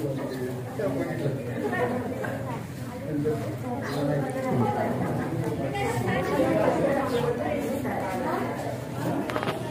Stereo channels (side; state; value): both; identical; correlation 1.00